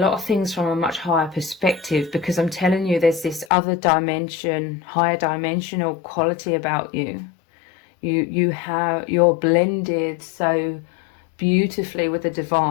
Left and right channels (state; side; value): drops out; right; at 3.5 s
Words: of things from a much higher perspective, because I'm telling you, there's this other dimension, higher dimensional quality about you. You're blended so beautifully with the